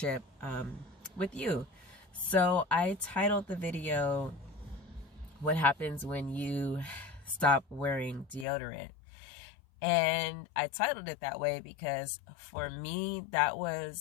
with you. So I titled the video, What Happens When You Stop Wearing Deodorant? And I titled it that way because for me, that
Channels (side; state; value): right; drops out; at 8.5 s